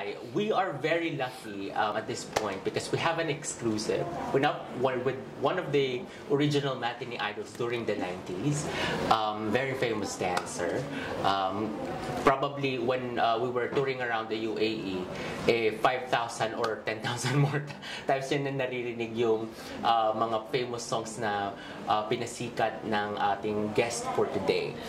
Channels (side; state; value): both; identical; correlation 1.00